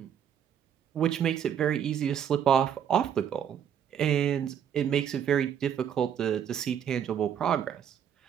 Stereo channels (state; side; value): quieter; left; 8.9 dB